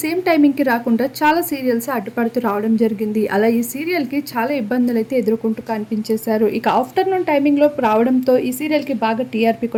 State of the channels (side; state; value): both; identical; correlation 1.00